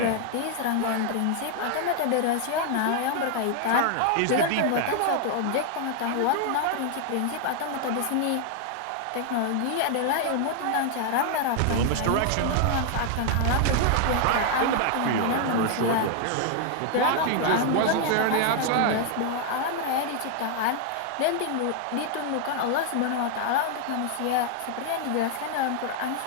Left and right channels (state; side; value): different; both; correlation 0.00